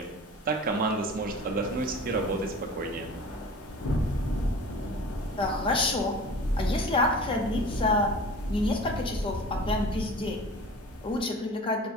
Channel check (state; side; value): normal; both; correlation 0.40